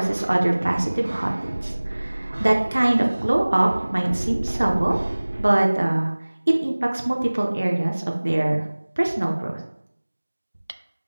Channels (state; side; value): inverted; both; correlation -1.00